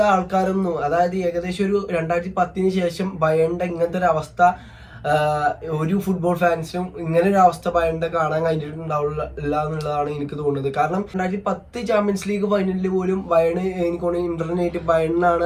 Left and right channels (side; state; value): both; identical; correlation 1.00